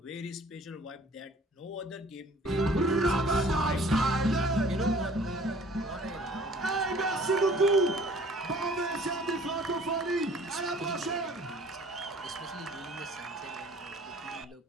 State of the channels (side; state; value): both; normal; correlation 0.52